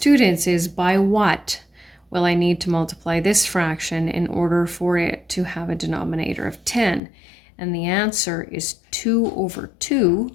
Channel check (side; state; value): right; drops out; at 7.0 s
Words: is, by what will I need to multiply this fraction in order for it to have a denominator of 10? And the answer is 2 over